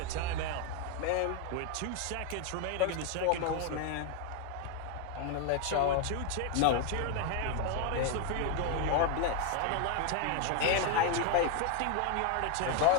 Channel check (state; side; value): different; both; correlation 0.01